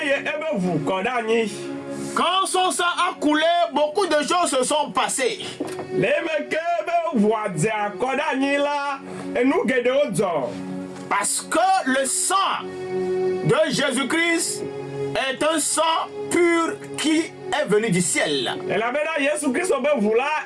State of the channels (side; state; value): both; identical; correlation 1.00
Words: ebe vu kodani. Quand son sang a coulé, beaucoup de choses se sont passées. Le meke ebe vu adza kodani la enu gede odzo. Parce que le sang de Jésus-Christ est un sang pur qui est venu du ciel. Ela bena Yesu Kristo be vu